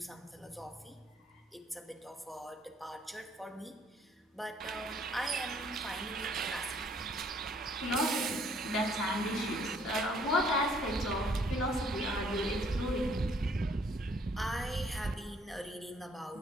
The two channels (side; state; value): both; normal; correlation 0.63